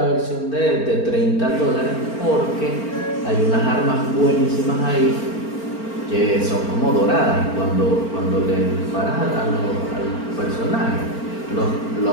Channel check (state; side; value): late; right; 4.4 ms